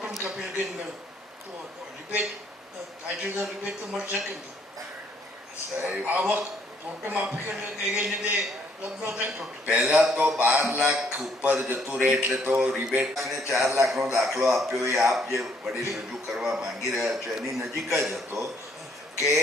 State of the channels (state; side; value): normal; both; correlation 0.67